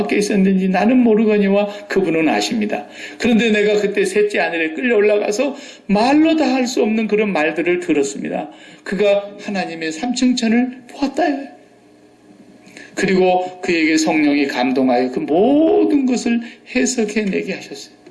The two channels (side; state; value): both; identical; correlation 1.00